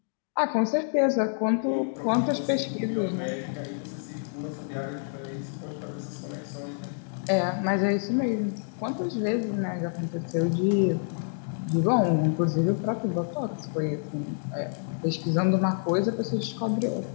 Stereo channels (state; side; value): silent; right; digital silence